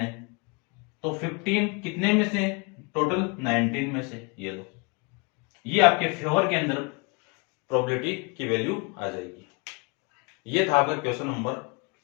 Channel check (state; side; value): quieter; right; 31.6 dB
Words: तो 15 कितने में से, टोटल 19 में से, ये लो, ये आपके फेवर के अंदर प्रोबेबिलिटी की वैल्यू आ जाएगी। ये था आपका क्वेश्चन नंबर